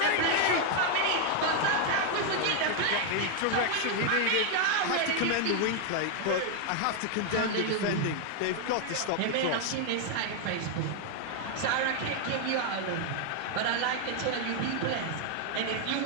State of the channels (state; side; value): different; both; correlation 0.00